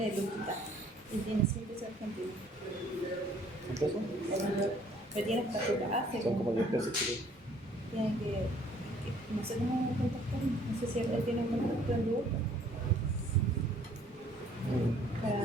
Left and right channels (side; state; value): both; normal; correlation 0.59